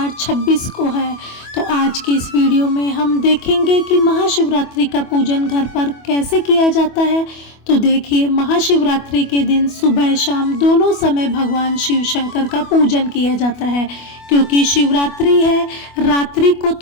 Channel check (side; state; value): right; late; 25 ms